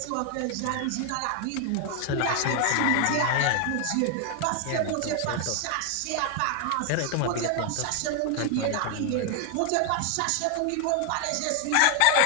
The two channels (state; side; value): different; both; correlation 0.00